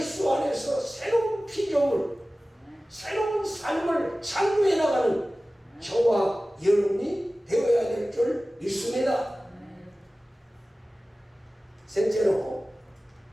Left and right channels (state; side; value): normal; both; correlation 0.97